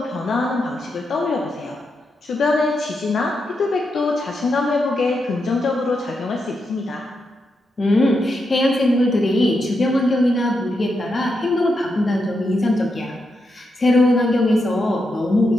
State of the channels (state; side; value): normal; both; correlation 0.84